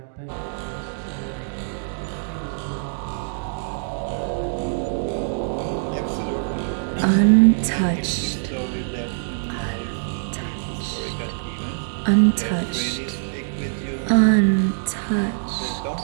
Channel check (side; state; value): left; silent; digital silence